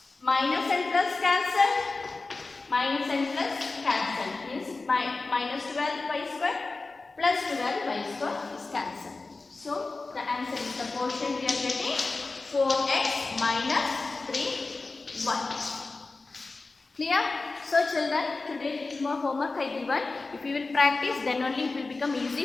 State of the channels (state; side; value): quieter; right; 3.6 dB